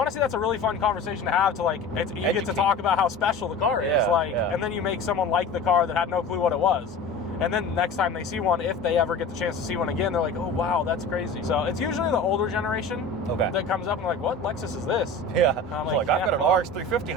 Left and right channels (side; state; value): right; quieter; 3.1 dB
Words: that's a really fun conversation to have. To like, you get to talk about how special the car is, and then you make someone like the car that had no clue what it was. And then next time they see one, if they ever get the chance to see one again, they're like, oh, wow, that's crazy. So it's usually the older generation that comes up and like, what Lexus is this? Yeah. I'm like, I've got an RX 350